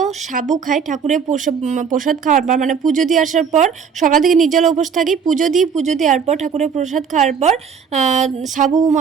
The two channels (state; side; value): quieter; left; 6.6 dB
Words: সাবু খাই ঠাকুরের প্রসাদ খাওয়ার পর, মানে পুজো দিয়ে আসার পর সকাল থেকে নির্জলা উপোস থাকি, পুজো দেওয়ার পর ঠাকুরের প্রসাদ খাওয়ার পর সাবু